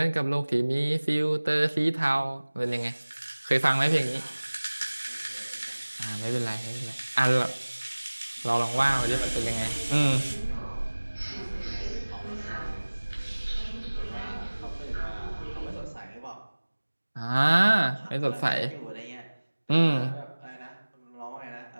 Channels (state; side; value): inverted; both; correlation -1.00